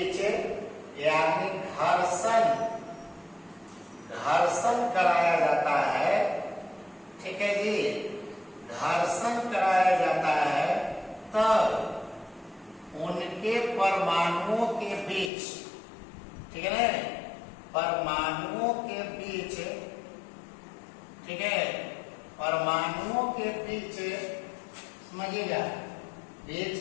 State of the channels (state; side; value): drops out; right; at 15.3 s